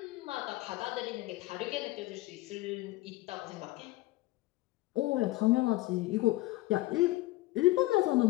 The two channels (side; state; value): right; quieter; 18.8 dB